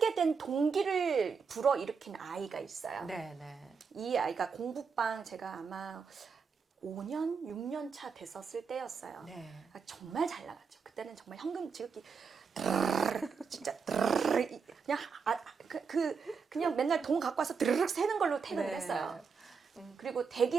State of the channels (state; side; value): quieter; left; 5.6 dB